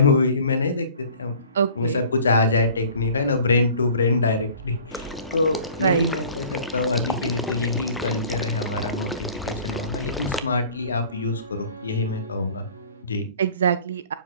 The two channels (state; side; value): inverted; both; correlation -0.48